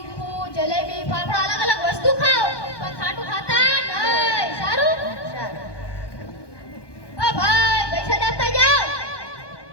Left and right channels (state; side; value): late; right; 1.2 ms